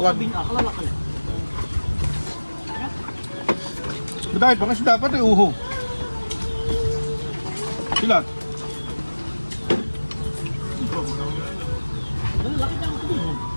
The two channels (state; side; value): inverted; both; correlation -1.00